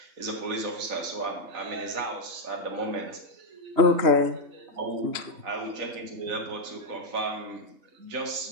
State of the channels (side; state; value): left; late; 3.0 ms